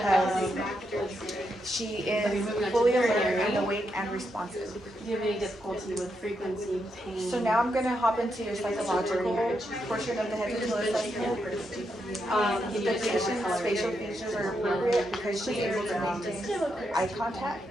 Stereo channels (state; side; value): normal; both; correlation 0.82